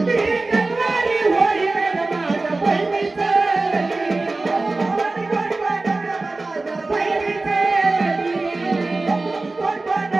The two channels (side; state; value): left; quieter; 3.3 dB